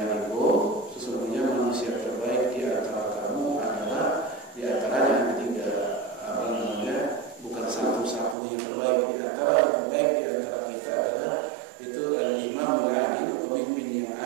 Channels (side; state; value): left; drops out; at 8.3 s